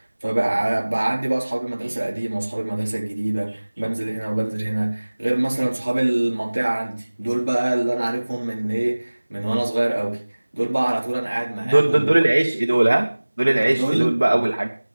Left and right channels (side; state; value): both; inverted; correlation -1.00